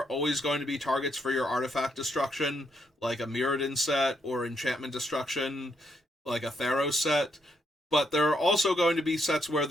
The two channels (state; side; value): normal; both; correlation 0.76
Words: always going to be targets for your artifact destruction, like a Mutant set, or enchantment destruction, like a Theros set. But there are also going to be sets where